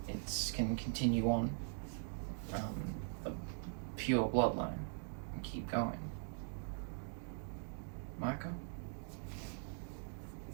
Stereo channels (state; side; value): silent; left; digital silence